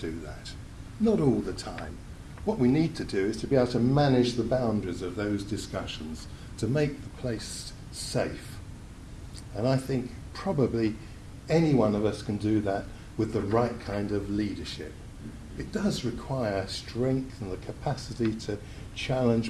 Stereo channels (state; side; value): identical; both; correlation 1.00